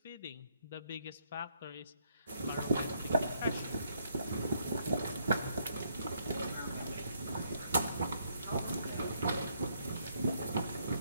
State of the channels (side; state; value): both; inverted; correlation -0.73